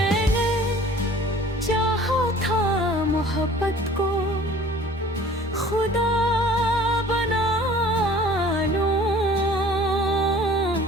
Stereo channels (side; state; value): both; normal; correlation 0.49